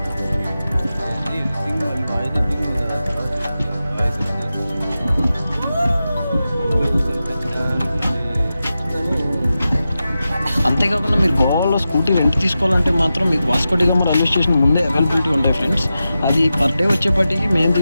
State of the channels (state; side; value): inverted; both; correlation -0.92